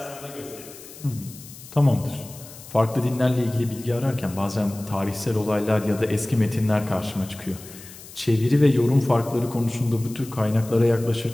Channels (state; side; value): noise; left; hiss, 17 dB below the sound